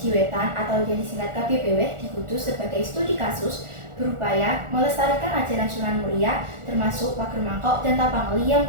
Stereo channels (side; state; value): left; late; 1.4 ms